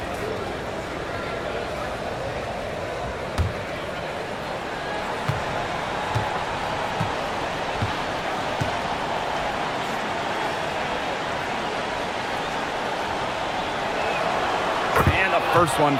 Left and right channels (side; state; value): both; identical; correlation 1.00